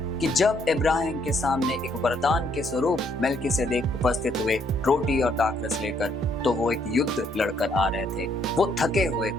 कि जब इब्राहिम के सामने एक वरदान के स्वरूप मेल्किसेदेक उपस्थित हुए रोटी और दाखरस लेकर, तो वो एक युद्ध लड़कर आ रहे थे, वो थके हुए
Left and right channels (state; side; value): normal; both; correlation 0.70